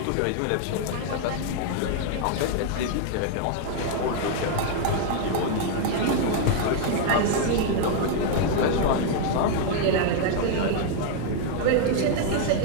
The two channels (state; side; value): different; both; correlation 0.00